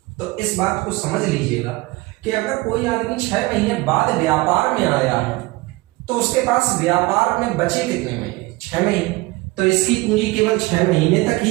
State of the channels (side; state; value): left; quieter; 21.6 dB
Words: तो इस बात को समझ लीजिएगा कि अगर कोई आदमी 6 महीने बाद व्यापार में आया है तो उसके पास व्यापार में बचे कितने महीने? 6 महीने। तो इसकी पूंजी केवल 6 महीने तक